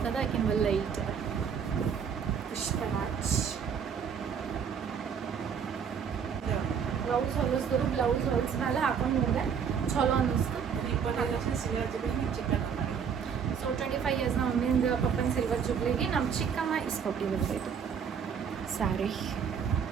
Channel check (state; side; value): quieter; left; 7.1 dB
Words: ಅದ, ಆಕಿನ ಲೈಟ್ ಅದ. ಪುಷ್ಪರಾಜ್ ಬ್ಲೌಸ್ ಹೊಲಿಸಿದ್ರು. ಬ್ಲೌಸ್ ಹೊಲಿಸ್ಮೇಲೆ ಹಾಕೊಂಡು ನೋಡಿದೆ ಚಲೋ ಅನ್ನಿಸ್ತು. ಸೊ 25 ಇಯರ್ಸ್ ನಮ್ಮ ಮಮ್ಮಿಂದ ಪಪ್ಪನ ಸಿಲ್ವರ್ ಜುಬ್ಲಿಗೆ ನಮ್ಮ ಚಿಕ್ಕಮ್ಮ ಇಸ್ಕೊಟ್ಟಿದ್ದು ಇದು ಸ್ಯಾರಿ.